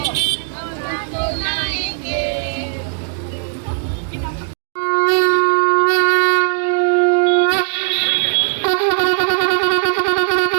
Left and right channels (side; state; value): left; silent; digital silence